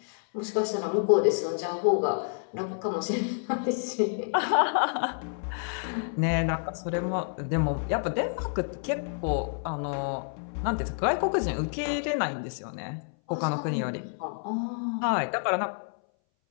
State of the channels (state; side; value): silent; right; 59 dB below the other